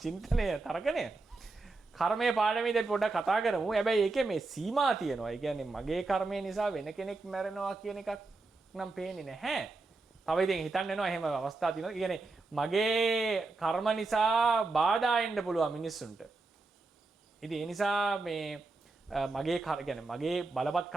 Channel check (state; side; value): quieter; left; 3.6 dB